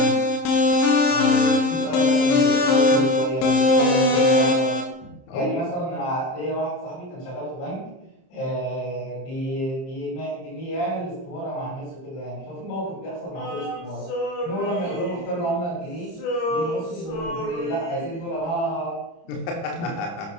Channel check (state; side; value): late; right; 30 ms